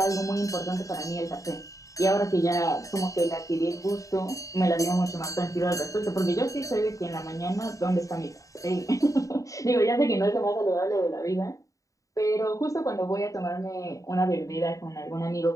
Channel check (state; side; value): late; right; 0.16 ms